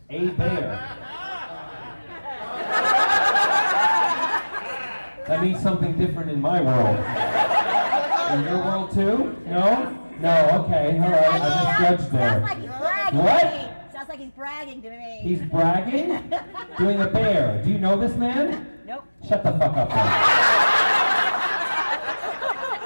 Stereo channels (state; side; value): inverted; both; correlation -1.00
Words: A bear. That means something different in my world. In your world too? No? No, okay, alright, I misjudged there. Sounds like he's bragging What? to me. Sounds like he's bragging to me. He's bragging? Doing a bear. Do you know this man? Nope. Shut the fuck up then.